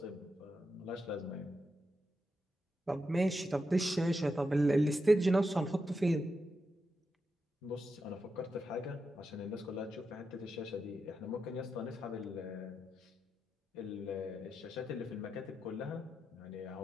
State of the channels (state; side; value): normal; both; correlation 0.87